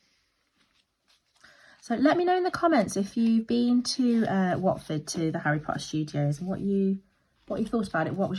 So let me know in the comments if you've been to Watford, to the Harry Potter Studios, and what you thought about it. What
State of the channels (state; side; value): identical; both; correlation 1.00